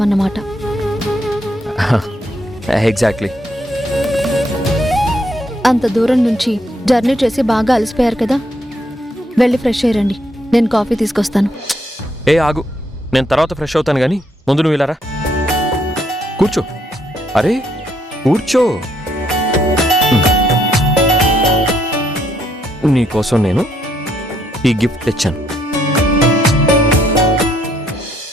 ఎగ్జాక్ట్లీ. అంత దూరం నుంచి జర్నీ చేసి బాగా అలసిపోయారు కదా, వెళ్ళి ఫ్రెష్ అయ్యండి, నేను కాఫీ తీసుకొస్తాను. ఏ ఆగు, నేను తర్వాత ఫ్రెష్ అవుతాను కానీ ముందు నువ్వు ఇలా రా. కూర్చో. అరే కూర్చో. నీకోసం నేను ఈ గిఫ్ట్ తెచ్చాను.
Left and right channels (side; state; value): both; normal; correlation 0.73